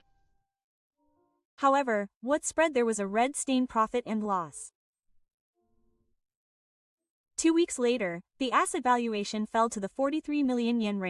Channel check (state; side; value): identical; both; correlation 1.00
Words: However, what spread there was a red stain profit and loss. 2 weeks later, the asset valuation fell to the 43 million yen